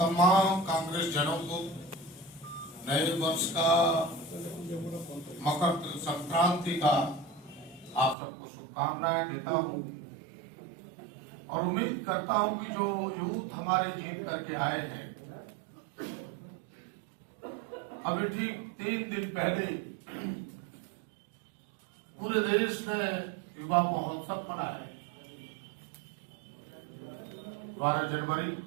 कांग्रेस जनों को नए वर्ष का, मकर संक्रांति का आप सबको शुभकामनाएं देता हूँ और उम्मीद करता हूँ कि जो यूथ हमारे जीत करके आए हैं, अभी ठीक 3 दिन पहले पूरे देश ने युवा महोत्सव मनाया 12 जनवरी।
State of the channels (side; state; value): left; drops out; at 8.2 s